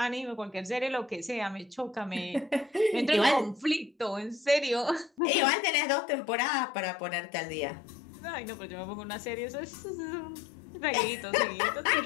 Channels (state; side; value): drops out; right; at 5.2 s